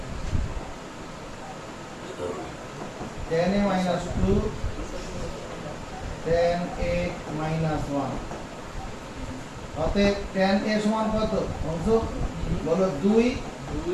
tan a minus 1 অতএব tan a সমান কত অংশ বলো 2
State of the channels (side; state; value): both; identical; correlation 1.00